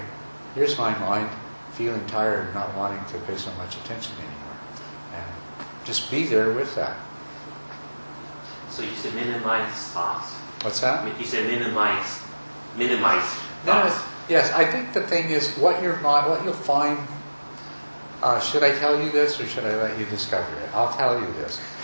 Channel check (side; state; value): both; inverted; correlation -1.00